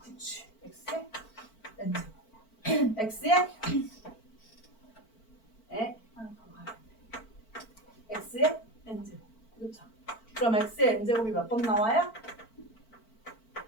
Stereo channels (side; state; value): right; late; 4.5 ms